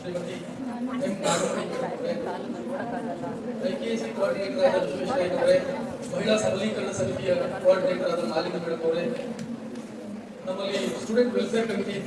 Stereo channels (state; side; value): identical; both; correlation 1.00